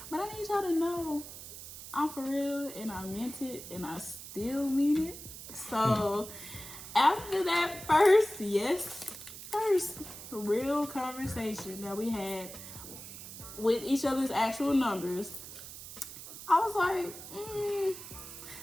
but I need y'all to know I'm for real, and I meant it, and I still mean it. So after that first real conversation that we had with each other's actual numbers, I was like,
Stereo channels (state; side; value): noise; right; hiss, 12 dB below the sound